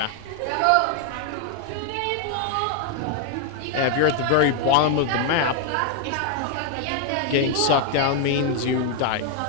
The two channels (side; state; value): both; different; correlation 0.00